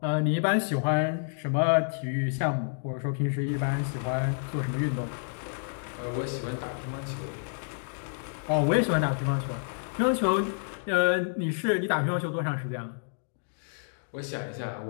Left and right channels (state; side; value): silent; right; digital silence